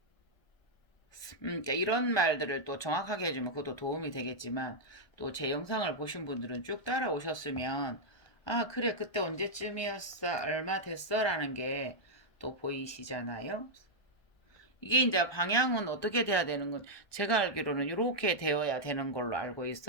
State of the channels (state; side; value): late; right; 1.2 ms